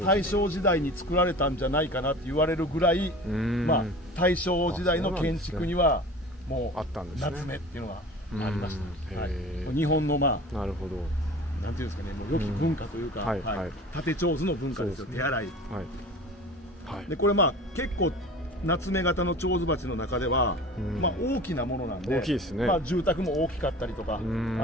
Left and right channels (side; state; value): both; normal; correlation 0.38